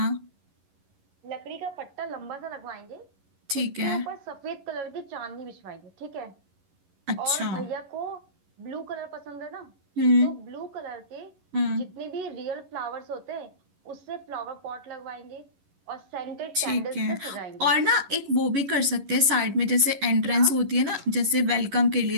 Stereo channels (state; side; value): late; left; 11 ms